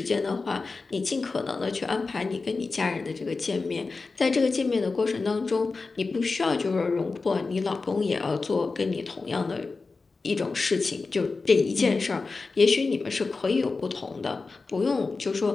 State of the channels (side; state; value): right; quieter; 4.0 dB